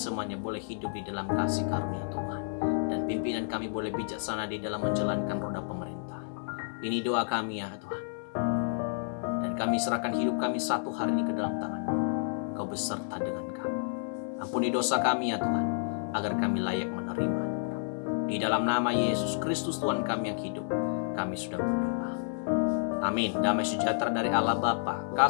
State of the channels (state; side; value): silent; right; digital silence